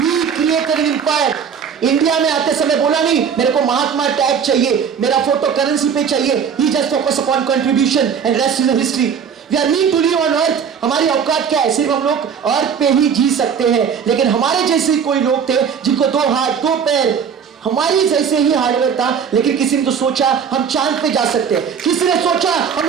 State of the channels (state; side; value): quieter; left; 7.2 dB